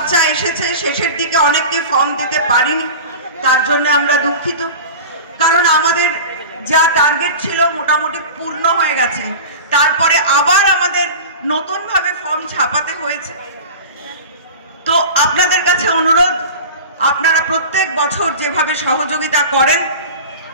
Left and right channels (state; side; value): inverted; both; correlation -0.33